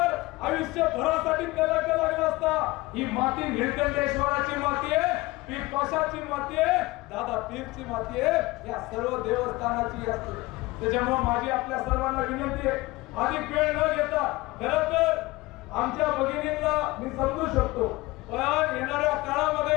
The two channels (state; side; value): quieter; right; 21.0 dB